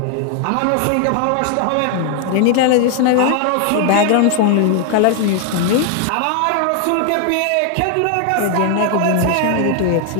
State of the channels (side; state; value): both; different; correlation 0.00